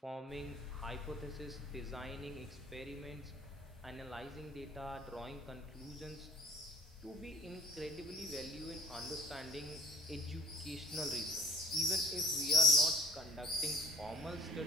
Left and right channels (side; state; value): both; normal; correlation 0.53